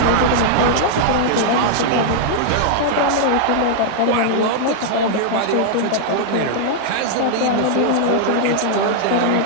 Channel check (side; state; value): both; different; correlation -0.01